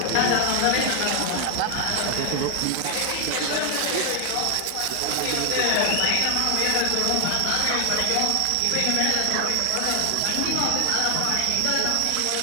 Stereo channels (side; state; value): both; different; correlation 0.00